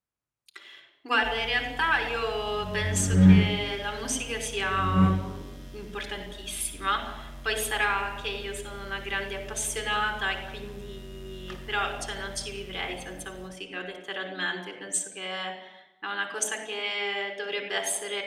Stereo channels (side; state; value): both; identical; correlation 1.00